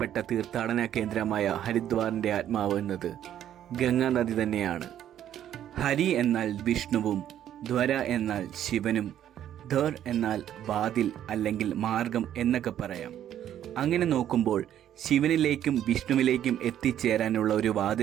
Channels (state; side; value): quieter; left; 10.9 dB